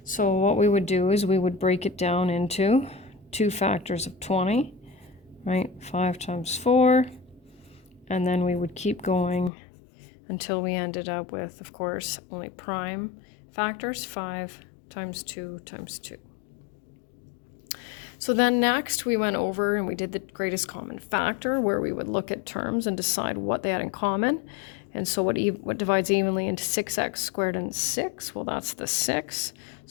So what we would do is we would break it down into two factors of 20, right? 5 times 4, and then we would keep going until we ended up with, of course, only prime factors, 5 times 2 times 2. So then next we went over and we did the greatest common factor, where we would look at terms and decide what they had in common. And so what divides evenly into 6x squared and 6? Well, that's the 6.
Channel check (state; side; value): drops out; right; at 9.5 s